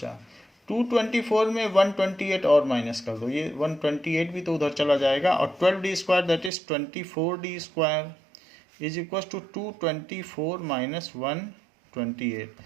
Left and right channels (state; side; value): drops out; left; at 6.5 s